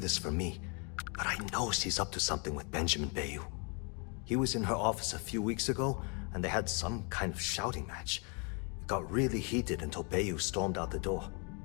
from me, but I know she's up to something with Benjamin Bayou. He was in her office a few weeks ago, and they had some kind of shouting match. It got really heated until Bayou stormed out the door.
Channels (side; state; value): right; quieter; 34.5 dB